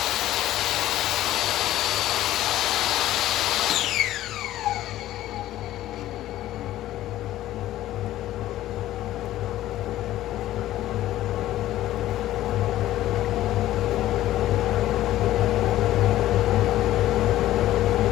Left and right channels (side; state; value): right; quieter; 14.2 dB